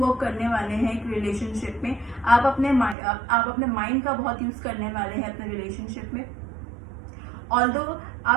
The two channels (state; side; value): drops out; left; at 3.0 s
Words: करने वाले हैं एक रिलेशनशिप में। आप अपने माइंड का बहुत यूज़ करने वाले हैं अपने रिलेशनशिप में। ऑल्दो